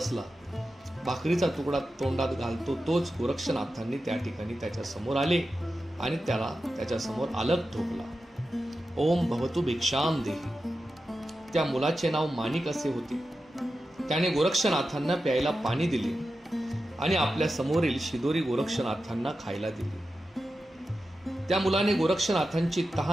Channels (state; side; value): normal; both; correlation 0.91